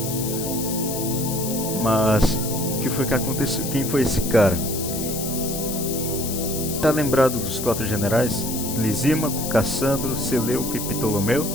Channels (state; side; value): noise; left; hiss, 6 dB below the sound